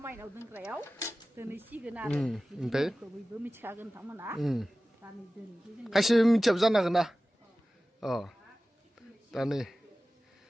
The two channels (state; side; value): normal; both; correlation 0.96